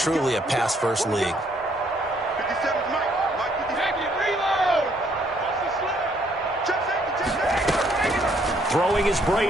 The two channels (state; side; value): normal; both; correlation 0.68